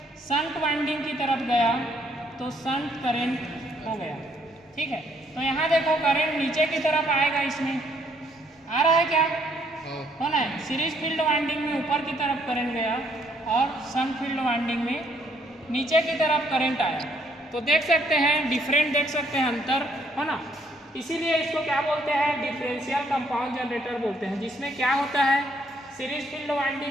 शंट वाइंडिंग की तरफ गया तो शंट करंट हो गया। ठीक है, तो यहाँ देखो करंट नीचे की तरफ आएगा, इसमें आ रहा है क्या, है ना। सीरीज फील्ड वाइंडिंग में ऊपर की तरफ करंट गया और शंट फील्ड वाइंडिंग में नीचे की तरफ करंट आया। तो देख सकते हैं डिफरेंट, देख सकते हैं अंतर, है ना। इसीलिए इसको क्या बोलते हैं, डिफरेंशियल कंपाउंड जनरेटर बोलते हैं, जिसमें क्या होता है, सीरीज फील्ड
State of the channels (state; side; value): normal; both; correlation 0.68